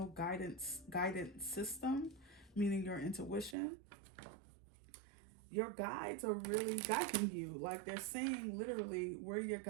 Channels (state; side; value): drops out; left; at 3.6 s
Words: guidance system, meaning your intuition. Your guides are really guiding you. Like, they're saying literally, we're your